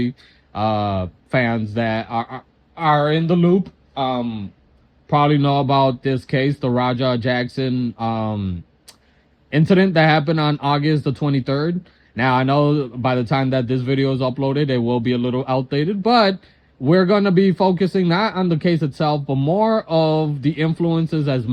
fans that are in the loop, probably know about this case, the Raja Jackson incident that happened on August the 23rd. Now, I know by the time that this video is uploaded, it will be a little outdated, but we're going to be focusing not on the case itself, but more of the influences as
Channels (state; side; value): identical; both; correlation 1.00